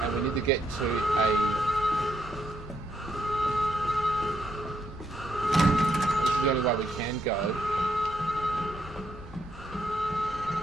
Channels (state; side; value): normal; both; correlation 0.76